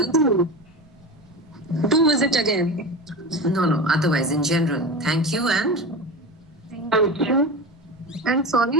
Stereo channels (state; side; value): normal; both; correlation 0.27